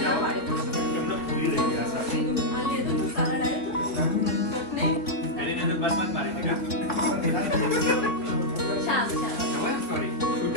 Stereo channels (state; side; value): late; right; 3.6 ms